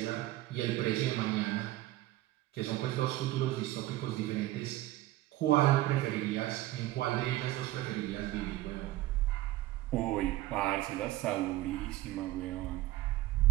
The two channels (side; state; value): left; quieter; 16.4 dB